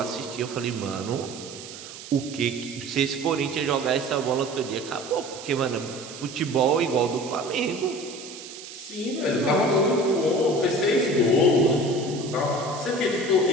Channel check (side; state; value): right; noise; hiss, 13 dB below the sound